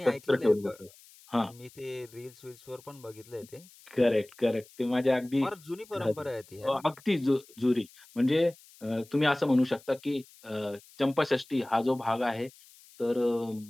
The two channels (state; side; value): noise; left; hiss, 24 dB below the sound